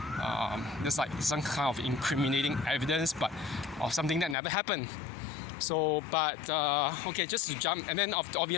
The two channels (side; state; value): right; drops out; at 4.4 s